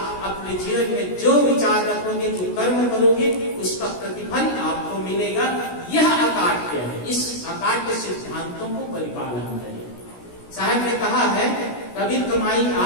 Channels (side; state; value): right; late; 17 ms